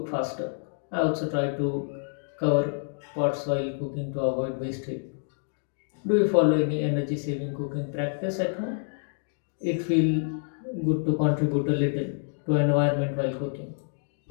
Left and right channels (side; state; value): right; silent; digital silence